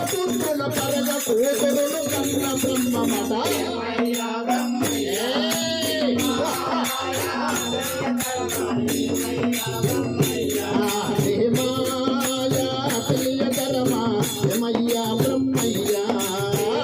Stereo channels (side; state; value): both; identical; correlation 1.00